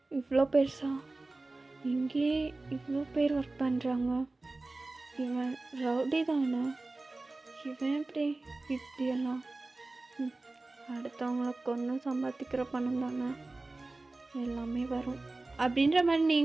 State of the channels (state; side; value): quieter; left; 3.2 dB